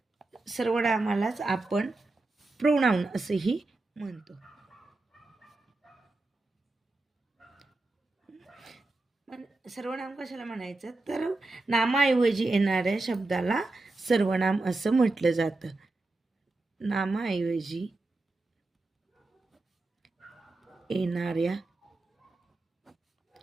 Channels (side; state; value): left; quieter; 3.1 dB